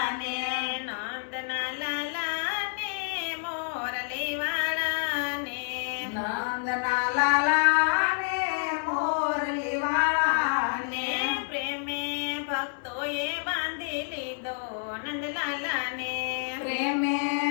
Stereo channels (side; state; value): right; silent; digital silence